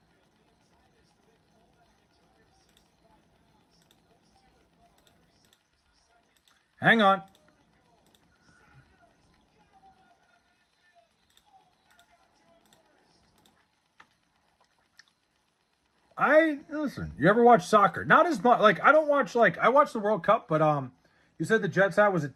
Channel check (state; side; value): identical; both; correlation 1.00